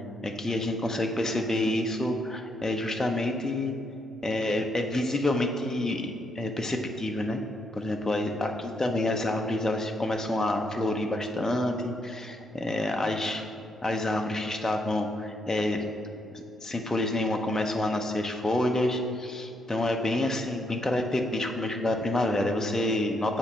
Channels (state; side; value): normal; both; correlation 0.76